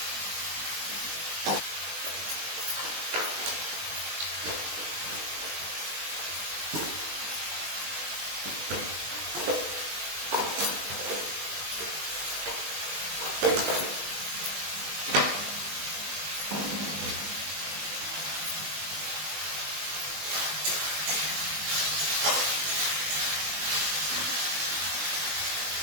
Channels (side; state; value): left; late; 20 ms